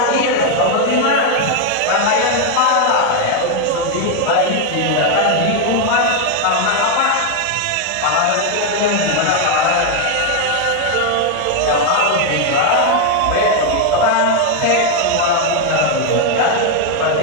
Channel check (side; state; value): both; different; correlation 0.01